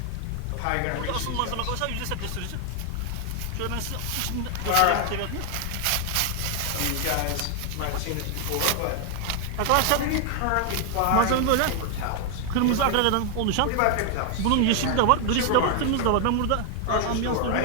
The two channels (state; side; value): different; both; correlation 0.00